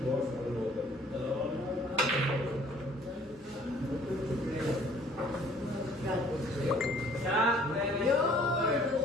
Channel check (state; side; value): normal; both; correlation 0.56